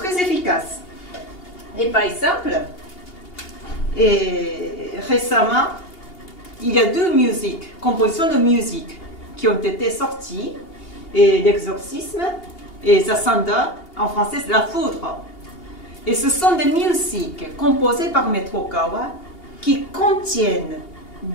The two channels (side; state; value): right; late; 2.8 ms